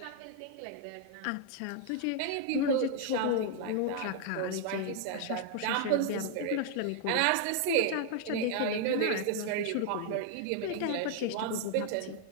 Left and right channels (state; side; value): different; both; correlation 0.00